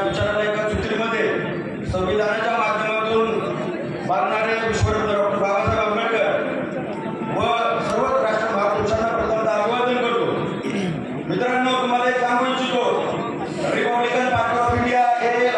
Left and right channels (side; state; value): both; identical; correlation 1.00